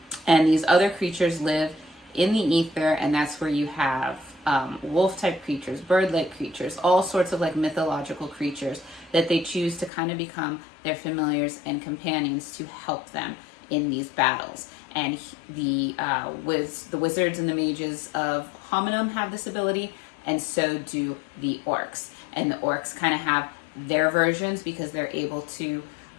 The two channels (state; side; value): drops out; right; at 9.9 s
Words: And these other creatures live in the ether, and that's where you have wolf-type creatures, bird-like creatures, all sorts of like mythological creatures that they choose to kind of become their familiars and companions to help them in these battles. And the wizards and the mages of Hominem have this ability, and so do the orcs. And the orcs kind of have their versions because they're able to